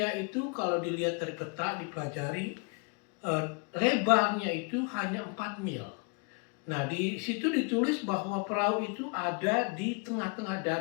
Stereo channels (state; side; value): quieter; right; 33.6 dB